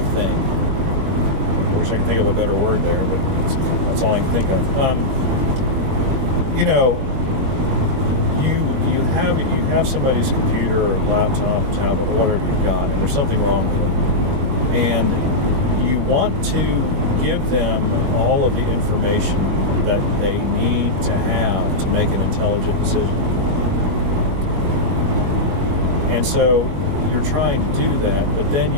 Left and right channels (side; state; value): left; late; 21 ms